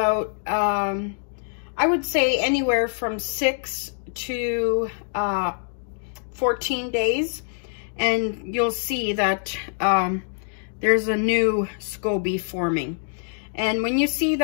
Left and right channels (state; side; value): silent; right; digital silence